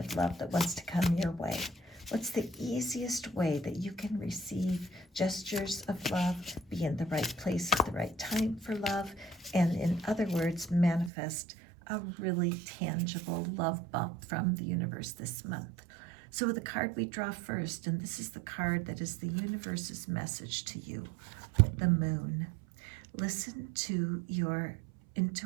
love that wants to come your way. What's the easiest way that you can receive gestures of love, be in the right place at the right time for love, and in other words, manifest a really tangible love bump from the universe this month? So the card we draw first, and this is the card that is the universe's message to you, the moon. Listen to your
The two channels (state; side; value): drops out; left; at 11.1 s